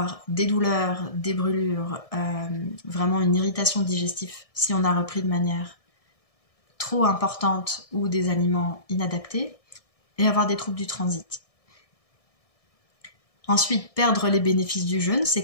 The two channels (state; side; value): late; right; 1.6 ms